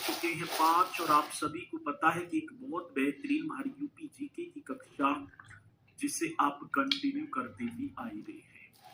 चुके हैं 5 और आप सभी को पता है कि एक बहुत बेहतरीन हमारी यूपी जीके की कक्षा जिसे आप कंटिन्यू करते ही आ ही रहे हैं।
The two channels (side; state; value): both; identical; correlation 1.00